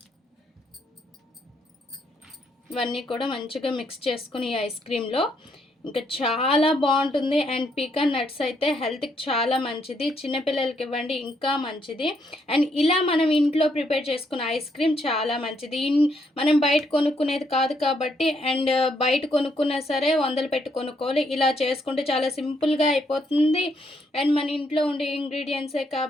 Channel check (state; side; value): normal; both; correlation 0.74